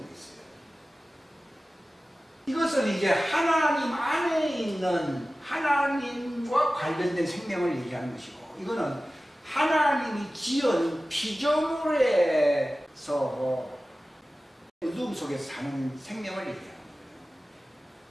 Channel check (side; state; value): both; normal; correlation 0.96